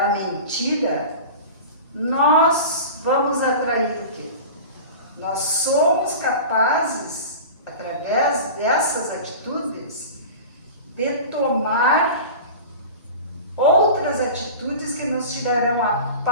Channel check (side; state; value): both; inverted; correlation -0.34